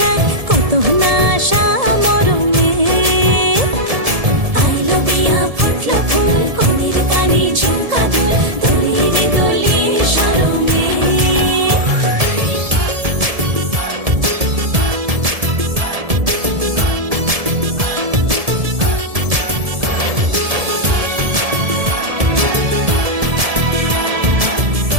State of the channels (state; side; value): late; left; 1.7 ms